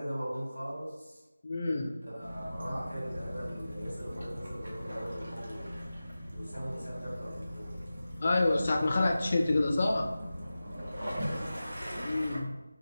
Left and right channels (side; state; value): both; inverted; correlation -0.96